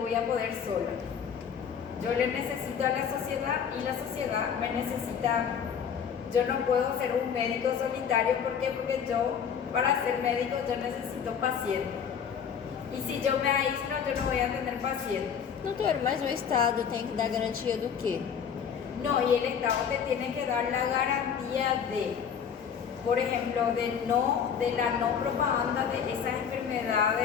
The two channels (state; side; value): quieter; right; 7.5 dB